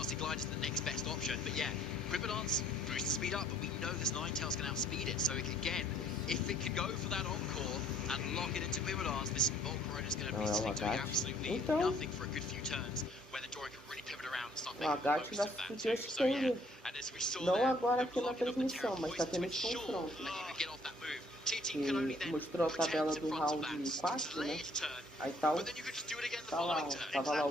Glide is the next best option. But yeah, Quiver Dance boosts the speed up, but we know this Ninetales can outspeed it. So again, if it can go for that encore and lock it into Quiver Dance, this Volcarona is going to be sitting doing absolutely nothing for a good few turns, where the Dorian can really pivot around and start making the most of that too. So yeah, and as we saw there, agora the aqui na blocking of the Terra transmissão, mas tá Poison to tendo esse ensure confronto. that you can get off that move. Que mostrou a tabela do round 4, né? Aí tá o... Tá lá, tava lá o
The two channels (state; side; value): normal; both; correlation 0.61